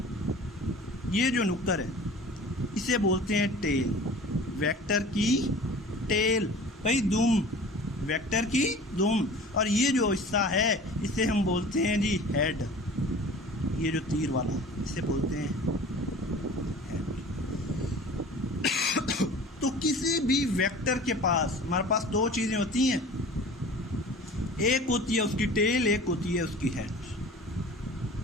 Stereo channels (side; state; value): both; normal; correlation 0.42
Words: ये जो नुक्कर है, इसे बोलते हैं टेल। वेक्टर की टेल भाई, दुम, वेक्टर की दुम। और ये जो हिस्सा है इसे हम बोलते हैं जी हेड। ये जो तीर वाला इसे बोलते हैं हेड। तो किसी भी वेक्टर के पास हमारे पास दो चीजें होती हैं, एक होती है उसकी टेल, एक होती है उसकी हेड।